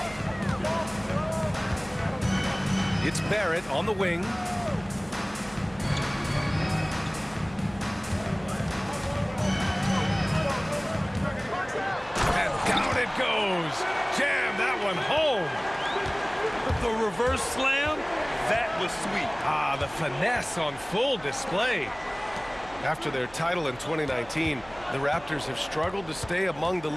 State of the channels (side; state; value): right; noise; hum, 21 dB below the sound